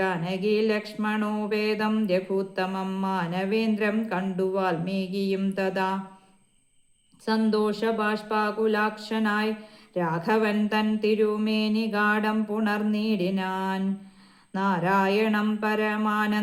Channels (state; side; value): identical; both; correlation 1.00